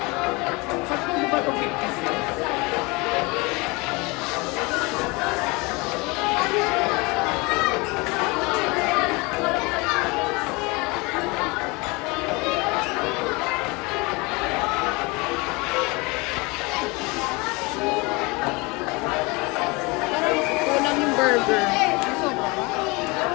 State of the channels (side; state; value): right; quieter; 26.0 dB